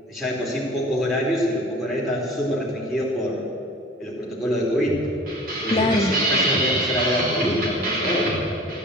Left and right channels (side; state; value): both; normal; correlation 0.43